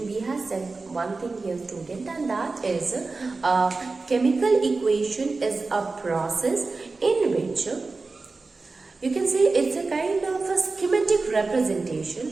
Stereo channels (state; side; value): quieter; left; 3.8 dB